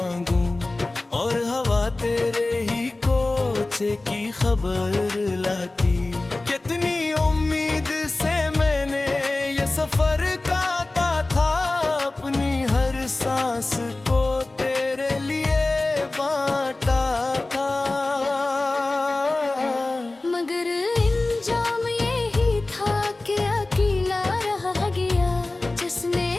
और हवा तेरे ही कोचे की खबर लाती। कितनी उम्मीद से मैंने ये सफर काटा था, अपनी हर सांस को तेरे लिए बांटा था। मगर इंजाम यही था कि अकेला रह गया, जिसने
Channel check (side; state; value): right; quieter; 3.0 dB